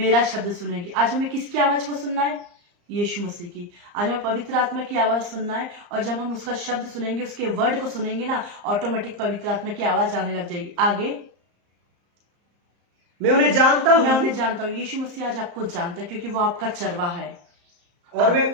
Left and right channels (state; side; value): late; left; 34 ms